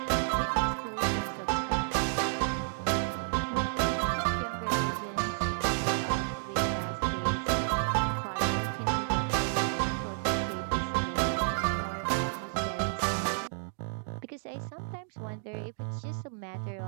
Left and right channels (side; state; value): left; silent; digital silence